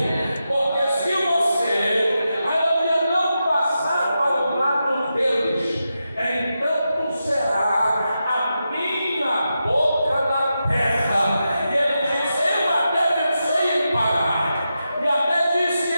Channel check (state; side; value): inverted; both; correlation -0.89